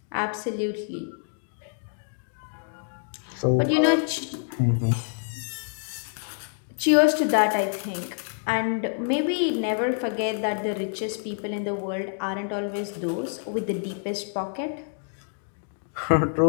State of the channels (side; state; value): right; silent; 60 dB below the other